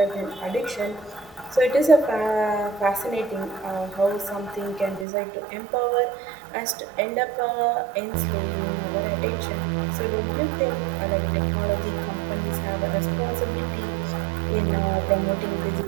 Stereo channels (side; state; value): left; drops out; at 5.1 s